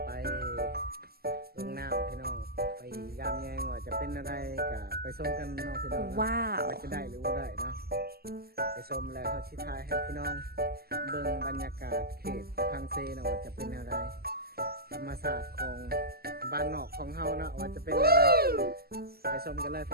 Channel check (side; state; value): left; late; 0.45 ms